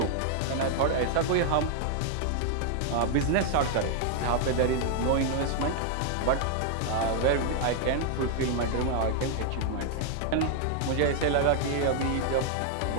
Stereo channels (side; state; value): both; different; correlation 0.00